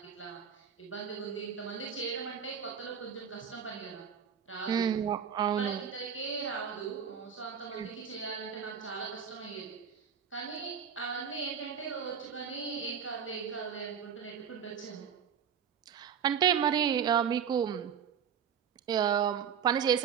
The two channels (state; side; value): quieter; left; 7.7 dB